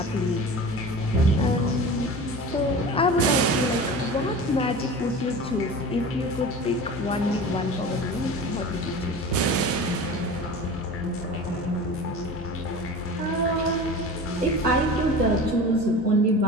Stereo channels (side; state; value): both; normal; correlation 0.35